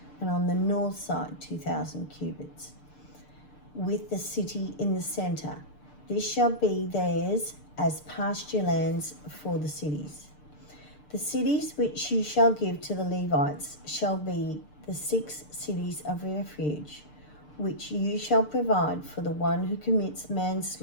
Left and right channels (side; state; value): right; late; 6.7 ms